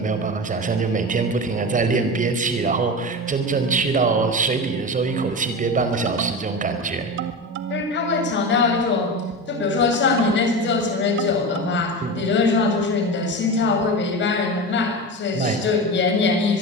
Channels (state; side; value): normal; both; correlation 0.24